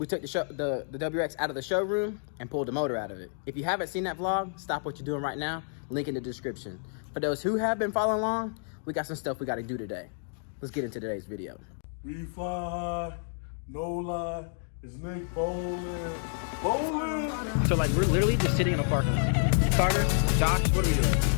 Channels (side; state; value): right; silent; digital silence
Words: took the WX out of the showroom and pulled the motor out of it. If you haven't seen that vlog, stop what you're doing right now, link in the description. For those who have been following along, we got some stuff we got to do today. Let's get into today's video. We fly, no lie, it's Nick Bowling. Bowling! So like we're literally just sitting in a parking lot. Carter, Josh, what are we